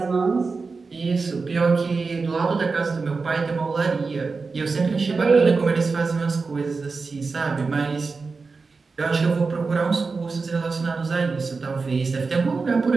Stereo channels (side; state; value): left; quieter; 4.4 dB